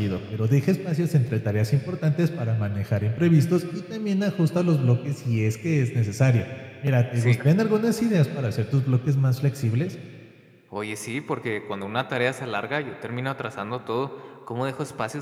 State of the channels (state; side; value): identical; both; correlation 1.00